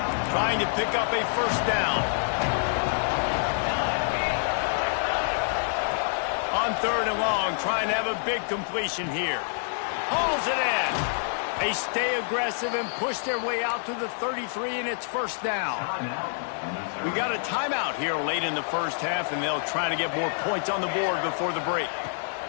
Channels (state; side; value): silent; right; digital silence